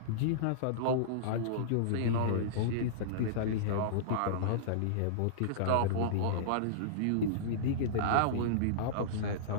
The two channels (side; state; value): both; different; correlation -0.03